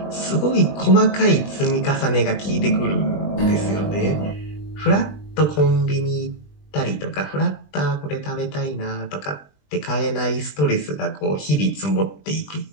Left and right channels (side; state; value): right; late; 20 ms